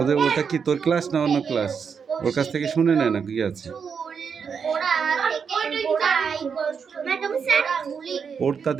ওটা কি তোর ক্লাস না অন্য ক্লাস? ওর কাছ থেকে শুনে নেয় না কি আছে। ওরটা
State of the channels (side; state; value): left; quieter; 6.4 dB